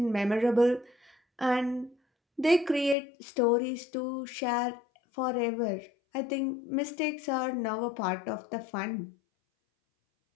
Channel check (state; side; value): drops out; right; at 3.0 s